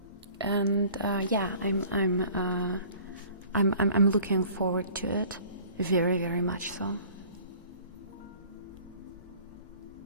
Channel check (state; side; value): inverted; both; correlation -0.50